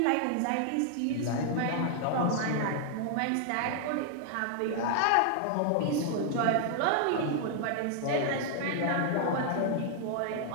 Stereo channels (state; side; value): different; both; correlation 0.00